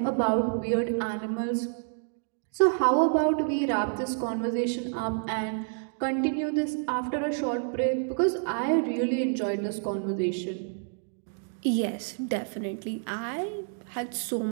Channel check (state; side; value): silent; left; digital silence